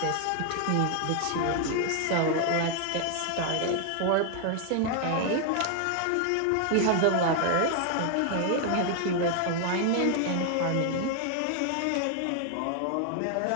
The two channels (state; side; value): different; both; correlation 0.00